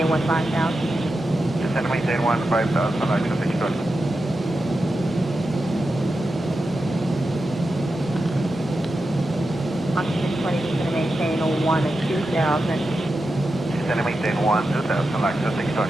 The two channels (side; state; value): both; normal; correlation 0.90